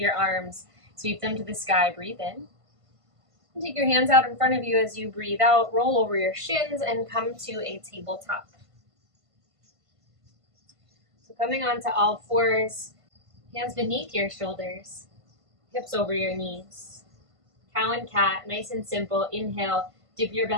arms, sweep them to the sky, breathe in. And take your hands out in front of you as you breathe out, roll over your shins and come to a tabletop. So coming onto all fours, hands beneath your shoulders, hips over your knees. Cow and cat, nice and simple. Inhale, dip your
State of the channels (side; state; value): left; late; 1.5 ms